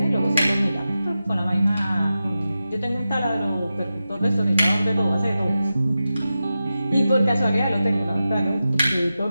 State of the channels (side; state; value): both; inverted; correlation -0.92